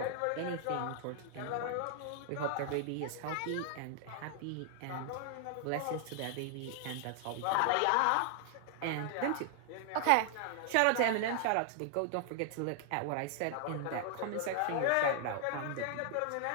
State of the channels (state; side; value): different; both; correlation 0.00